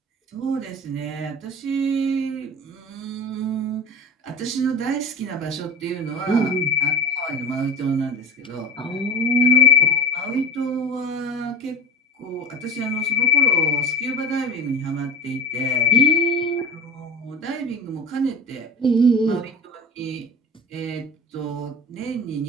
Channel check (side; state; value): both; normal; correlation 0.36